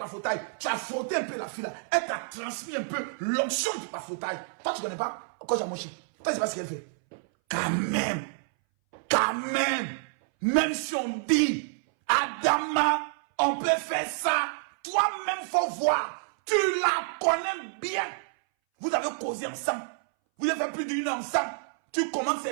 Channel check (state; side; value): silent; left; 59 dB below the other